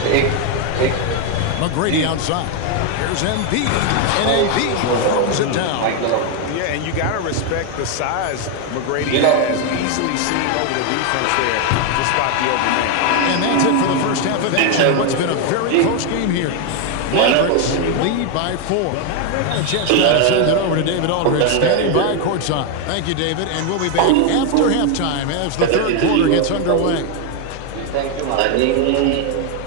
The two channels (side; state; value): both; different; correlation 0.01